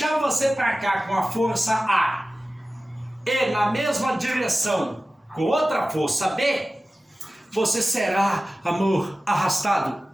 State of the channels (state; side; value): normal; both; correlation 0.96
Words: você para cá com a força A e na mesma direção com outra força B, você será, amor, arrastado